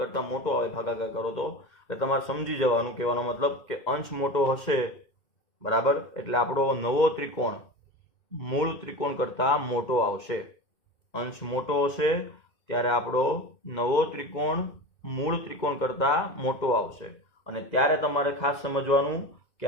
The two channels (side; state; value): right; late; 2.1 ms